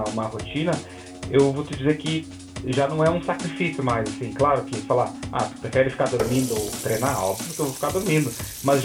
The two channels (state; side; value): identical; both; correlation 1.00